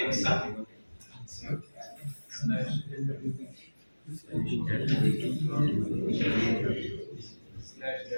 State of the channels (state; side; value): inverted; both; correlation -1.00